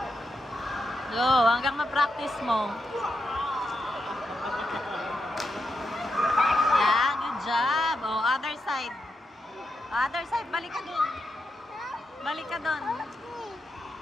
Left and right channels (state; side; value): normal; both; correlation 0.85